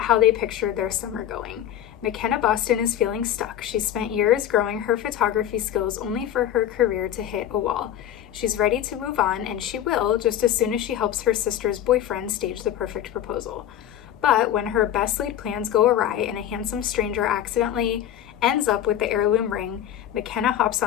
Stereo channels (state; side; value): quieter; right; 11.1 dB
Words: how they pictured their summer going. McKenna Boston is feeling stuck. She spent years growing her photography skills only for her career to hit a wall. She's ready to move on, and she will just as soon as she helps her sister's boyfriend stage the perfect proposal. But when her best laid plans go awry and a handsome stranger accidentally ends up with the heirloom ring, McKenna hops